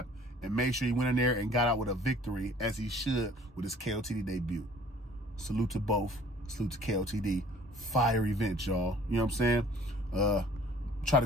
and made sure he went in there and got out with a victory, as he should, with his KOTD debut. Salute to both. Salute to KOTD. Fire event, y'all. You know what I'm saying? Try to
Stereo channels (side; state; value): both; normal; correlation 0.53